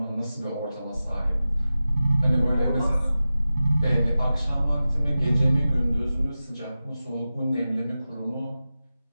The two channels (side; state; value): both; inverted; correlation -0.94